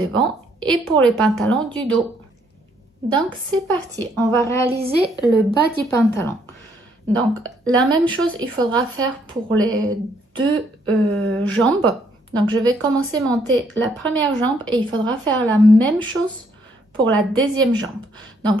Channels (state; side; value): normal; both; correlation 0.69